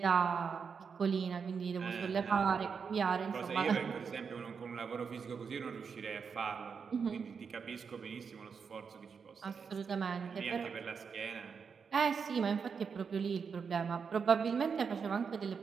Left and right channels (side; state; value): left; quieter; 6.0 dB